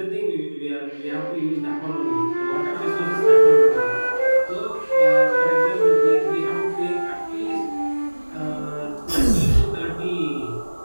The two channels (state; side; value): inverted; both; correlation -1.00